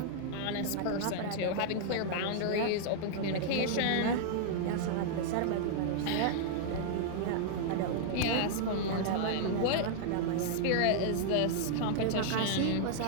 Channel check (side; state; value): both; different; correlation -0.01